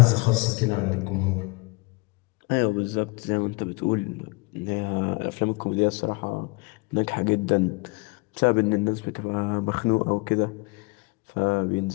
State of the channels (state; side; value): quieter; right; 27.6 dB